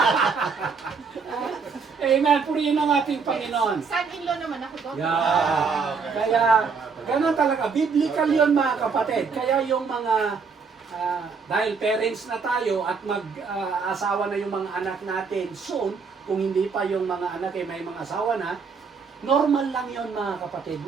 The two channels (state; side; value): quieter; left; 5.3 dB